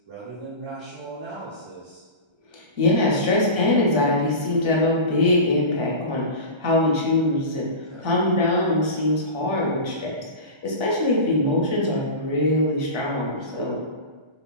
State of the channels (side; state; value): left; late; 1.3 ms